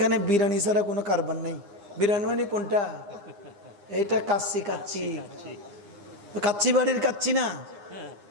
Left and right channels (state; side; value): late; left; 9.8 ms